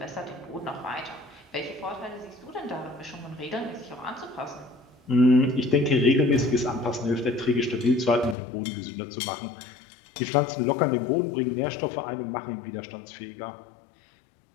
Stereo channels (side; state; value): right; drops out; at 8.3 s